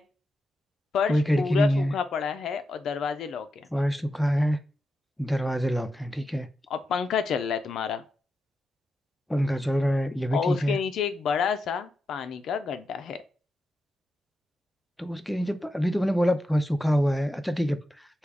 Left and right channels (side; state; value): both; normal; correlation 0.88